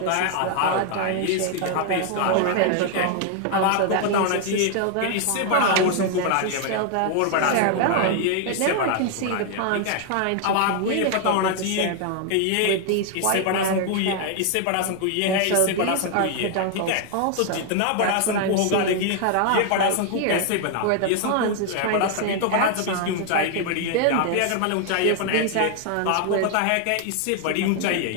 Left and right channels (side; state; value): both; different; correlation 0.00